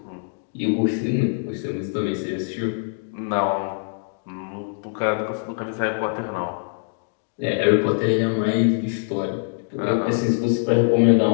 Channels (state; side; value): silent; right; digital silence